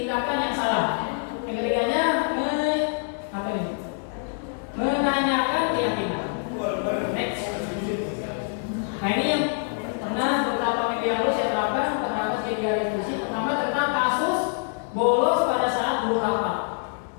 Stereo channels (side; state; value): right; silent; 61 dB below the other